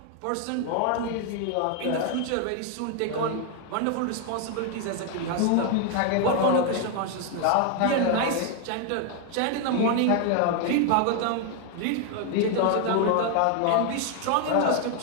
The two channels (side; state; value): both; different; correlation 0.01